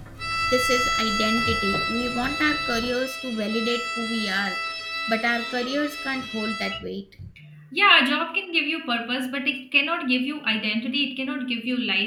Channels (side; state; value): both; identical; correlation 1.00